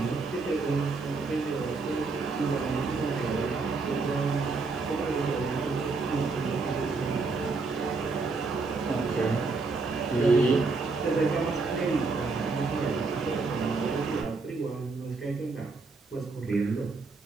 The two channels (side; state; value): left; quieter; 4.1 dB